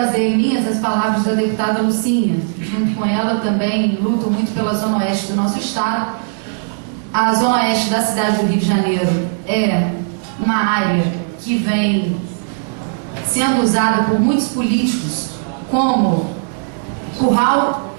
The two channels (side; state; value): left; silent; 68 dB below the other